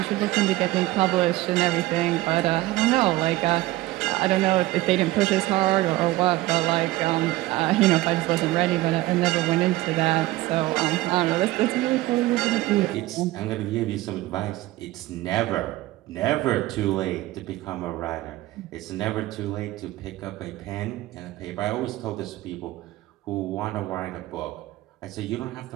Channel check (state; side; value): quieter; left; 17.7 dB